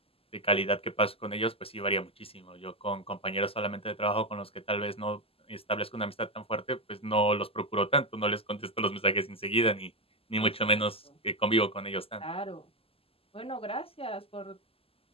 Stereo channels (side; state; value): right; late; 0.28 ms